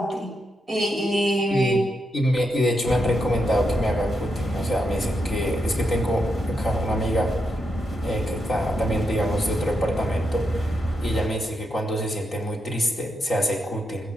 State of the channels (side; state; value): both; normal; correlation 0.83